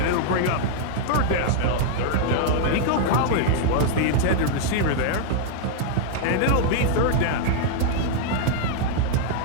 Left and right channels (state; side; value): different; both; correlation -0.01